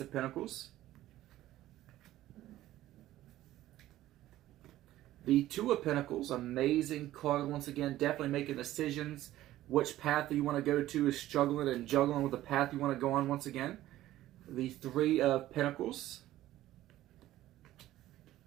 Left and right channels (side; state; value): left; quieter; 14.6 dB